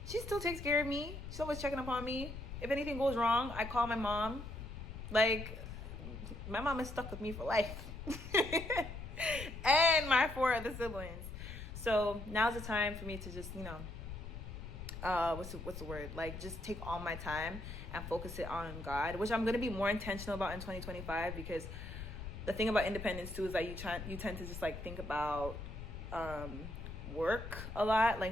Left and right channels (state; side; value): noise; left; rumble, 9 dB below the sound